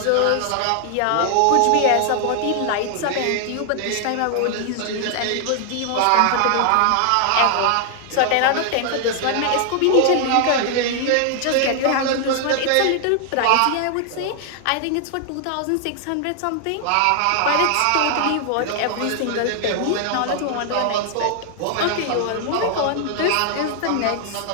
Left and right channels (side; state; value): both; different; correlation 0.00